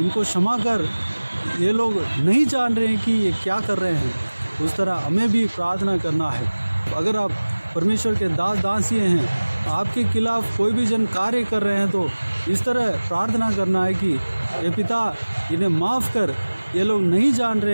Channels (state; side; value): inverted; both; correlation -1.00